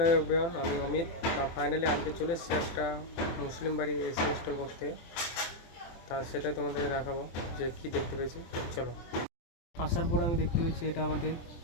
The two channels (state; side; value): late; right; 24 ms